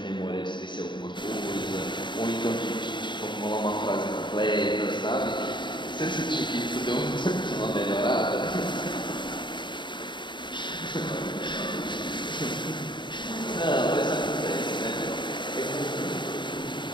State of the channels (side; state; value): right; late; 0.23 ms